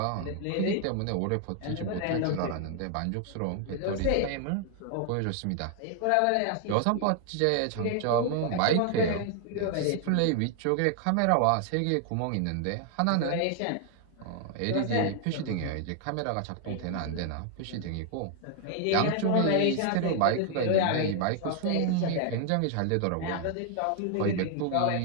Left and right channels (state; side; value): different; both; correlation 0.00